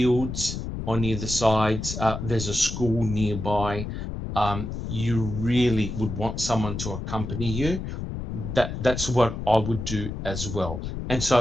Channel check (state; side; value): noise; left; rumble, 6 dB below the sound